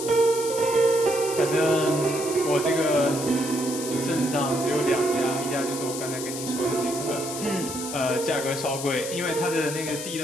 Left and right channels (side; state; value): left; noise; hiss, 7 dB below the sound